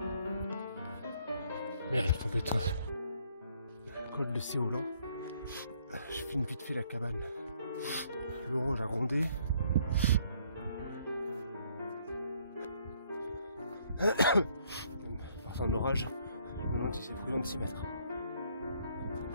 Merde, faut être col de Séolan. Je filme vite fait la cabane. L'orange a grondé. Enfin d'orage, je me demande si c'est prudent de s'y mettre.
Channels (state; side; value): inverted; both; correlation -0.67